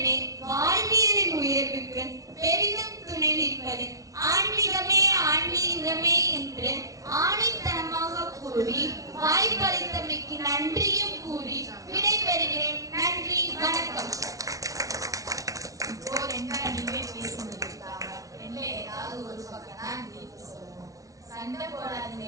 வாழ்வியலின் உயர்வுக்கு பெரிதும் துணை நிற்பது ஆன்மீகமே ஆன்மீகமே என்று ஆணித்தனமாக கூறி வாய்ப்பளித்தமைக்கு நன்றியும் கூறி விடைபெறுகிறேன். நன்றி, வணக்கம். இப்போ ரெண்டா நீங்களே பேசிட்டு இருக்காங்க. ரெண்டுல ஏதாவது ஒரு பக்கம் தான் தீர்ப்பு சொல்லணும். சண்டை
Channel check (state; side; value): late; left; 0.17 ms